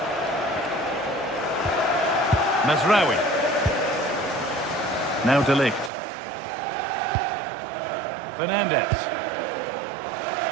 Mazraoui. Now De Ligt. Fernandez.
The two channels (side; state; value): left; drops out; at 5.9 s